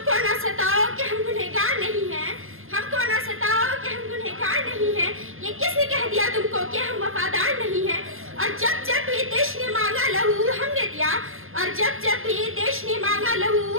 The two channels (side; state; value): left; late; 0.60 ms